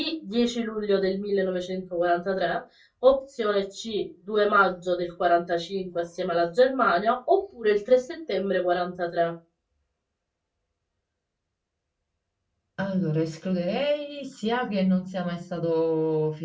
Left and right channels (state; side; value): identical; both; correlation 1.00